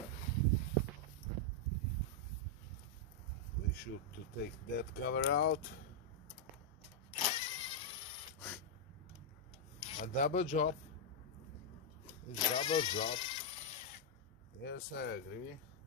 We should to take that cover out. A double job. It's double job. Yes, I agree.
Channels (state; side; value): normal; both; correlation -0.04